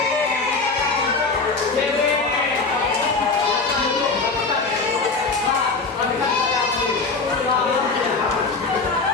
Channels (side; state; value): right; quieter; 4.1 dB